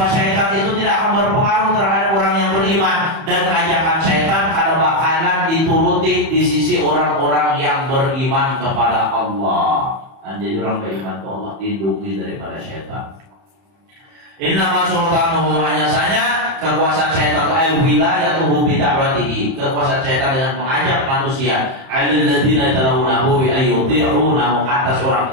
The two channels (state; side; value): late; left; 31 ms